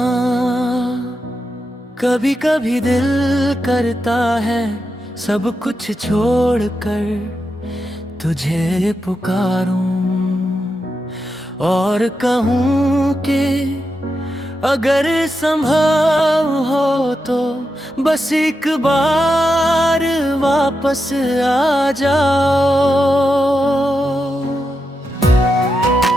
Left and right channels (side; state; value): both; normal; correlation 0.87